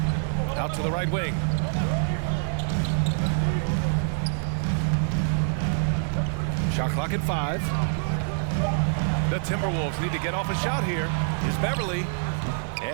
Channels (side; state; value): left; silent; digital silence